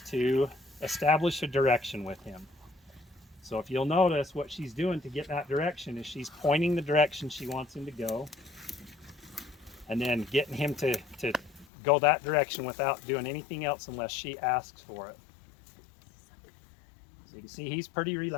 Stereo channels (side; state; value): right; drops out; at 11.7 s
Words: to establish a direction with him. So if you'll notice, what she's doing to get that direction is she's pointing the direction she wants him to go, and then getting him to go that direction without doing anything else unless she asks for it. So you can see he's pretty